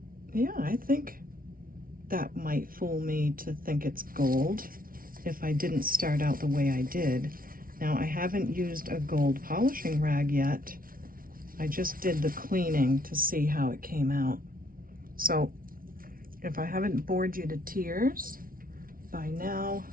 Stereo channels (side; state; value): left; late; 0.42 ms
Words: Yeah, I think that might fool me to think it's gold if I didn't start out the way I did. Now, I haven't used a gold polishing rag yet. I just did the cleaning to see how it came out. So if I haven't bored you to tears by now,